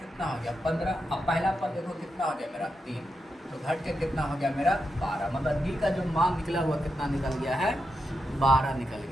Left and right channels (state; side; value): normal; both; correlation 0.86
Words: हो गया 15। अब पहला पद देखो कितना हो गया मेरा 3, तो घट के कितना हो गया मेरा 12। मतलब डी का जो मान निकला हुआ कितना निकल गया है, 12 निकल